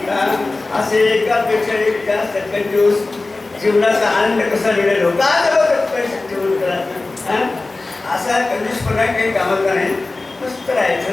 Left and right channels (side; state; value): right; quieter; 3.3 dB